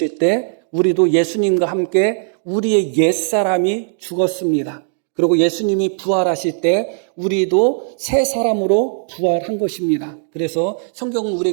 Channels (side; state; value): left; silent; digital silence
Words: 때 우리도 예수님과 함께 우리의 옛사람이 죽었습니다. 그리고 예수님이 부활하실 때 우리도 새 사람으로 부활한 것입니다. 그래서 성경은